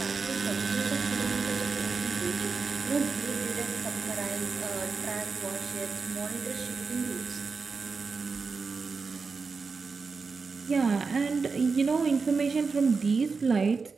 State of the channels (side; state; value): left; quieter; 4.7 dB